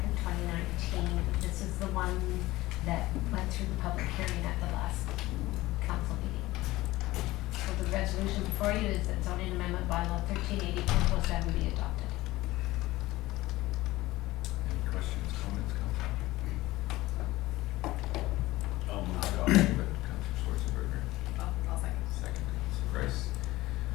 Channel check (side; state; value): right; quieter; 18.2 dB